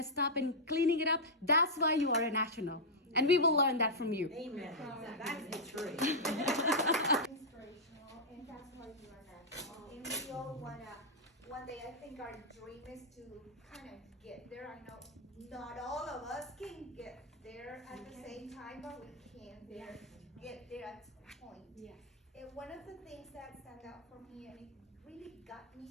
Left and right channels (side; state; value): both; normal; correlation -0.07